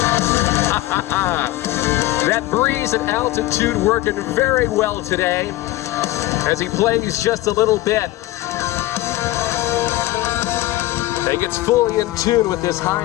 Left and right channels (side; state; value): right; quieter; 16.7 dB